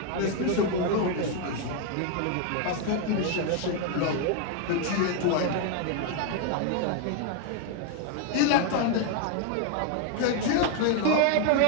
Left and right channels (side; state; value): both; different; correlation 0.01